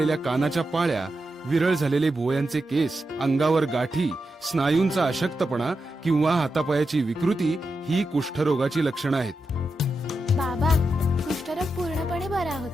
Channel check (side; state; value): both; normal; correlation 0.88